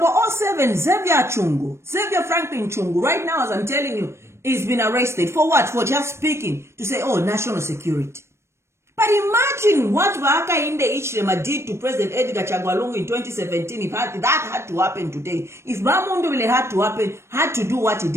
Xavier Franklin Chungu, right now as I'm telling you, he's been arrested. For what? For just speaking to say, oh, national security. But imagine what Hakainde Hichilema did to President Edgar Chagwa Lungu in 2017 if that had to happen today. If Bamundubile had to do what he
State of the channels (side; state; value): left; late; 0.13 ms